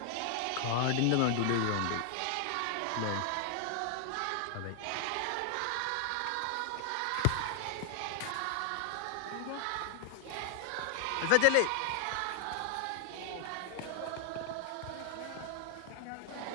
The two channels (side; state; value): both; different; correlation 0.00